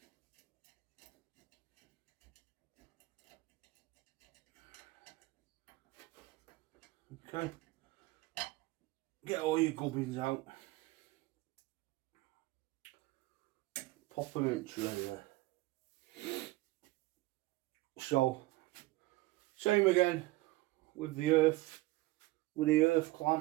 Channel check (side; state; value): left; quieter; 19.8 dB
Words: Okay. Get all your gubbins out. Pop them in tray there. So, same again with the earth